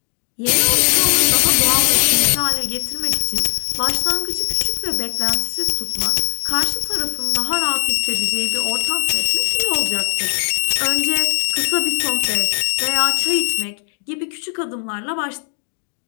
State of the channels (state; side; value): silent; right; digital silence